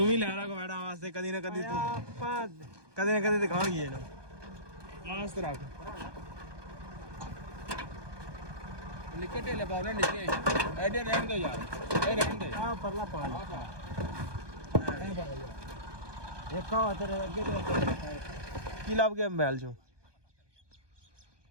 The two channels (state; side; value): late; left; 1.2 ms